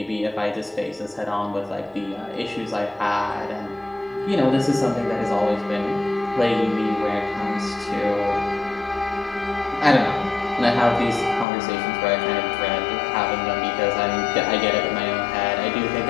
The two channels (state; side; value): drops out; right; at 11.5 s